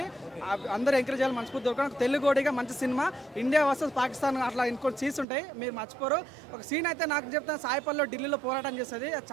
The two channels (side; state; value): left; drops out; at 5.2 s